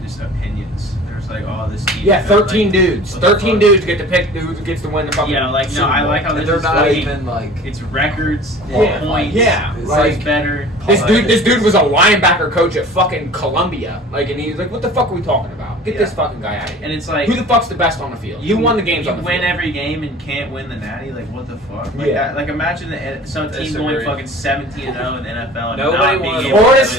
just opinions. There's like, oh, this team. Yeah, 13 dudes. what the 13 fuck? dudes get to pick who gets to win the fucking. Yeah, like no, Super I Bowl. like how this They're is not like, even like. it's records, Yeah, points. yeah, It's like- better. This dude was a linebacker coach at fucking Columbia. Like, and he was like, "What the fuck are we talking about? Get this fucking guy out of here." And it's like Who the fuck's the best on the field? Who won the games You on the win field? every game and can't win the natty. Like what the fuck? Like, Yeah. like imagine some team going Disagree. fucking 17-0 in the NFL. And Nobody not being won. able Florida to-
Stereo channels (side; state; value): both; normal; correlation 0.43